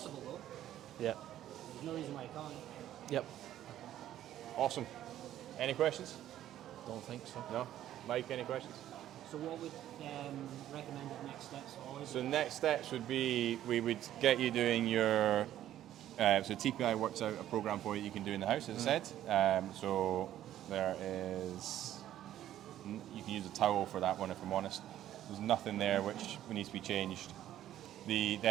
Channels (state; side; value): quieter; left; 12.3 dB